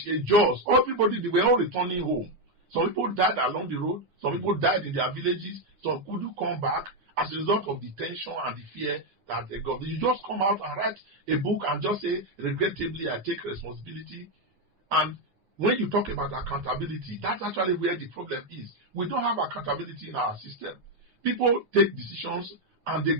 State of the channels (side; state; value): left; late; 9.7 ms